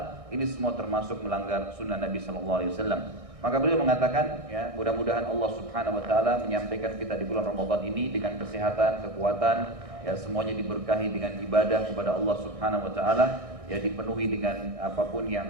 Ini semua termasuk melanggar sunnah Nabi SAW. Maka beliau mengatakan, mudah-mudahan Allah Subhanahu Wa Taala menyampaikan kita di bulan Ramadan ini dengan kesehatan, kekuatan, semuanya diberkahi dengan ibadah kepada Allah Subhanahu Wa Taala, dipenuhi dengan apapun yang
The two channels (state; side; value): late; left; 1.6 ms